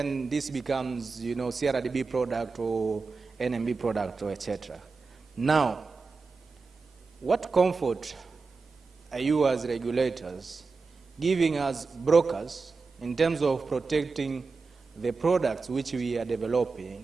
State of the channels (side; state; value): left; quieter; 4.4 dB